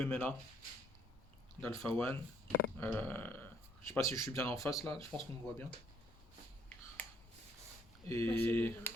d'Alpha One. Je sais pas si je suis bien en face là, je pense qu'on me voit bien. Et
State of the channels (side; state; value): both; normal; correlation 0.66